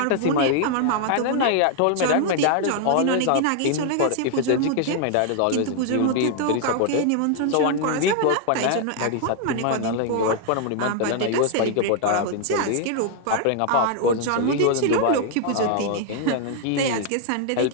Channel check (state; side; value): different; both; correlation 0.00